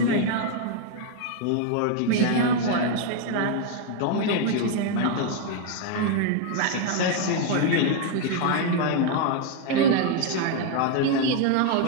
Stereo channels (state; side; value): different; both; correlation 0.00